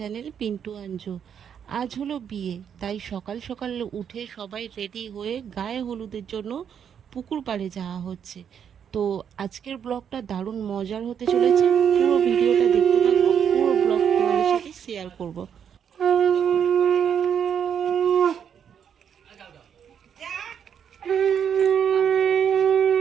Pintu Anju. আজ হলো বিয়ে, তাই সকাল সকাল উঠে সবাই রেডি হয়ে গায়ে হলুদের জন্য পুকুর পাড়ে যাওয়া হচ্ছে। তো আজকের ব্লগটা দারুণ মজার হতে চলেছে। পুরো ভিডিওটা দেখতে থাকো, পুরো ব্লগ তোমাদের সাথে শেয়ার করব।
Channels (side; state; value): left; quieter; 8.1 dB